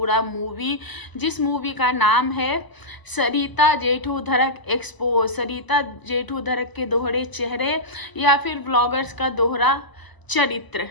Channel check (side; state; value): right; late; 1.0 ms